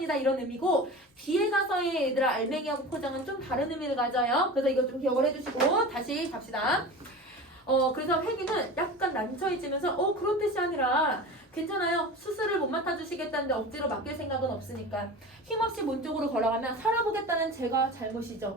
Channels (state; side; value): normal; both; correlation 0.33